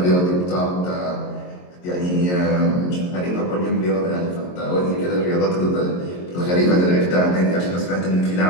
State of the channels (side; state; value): right; late; 22 ms